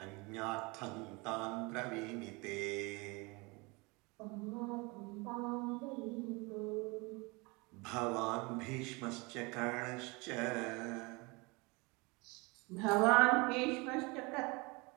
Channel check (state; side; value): quieter; left; 26.9 dB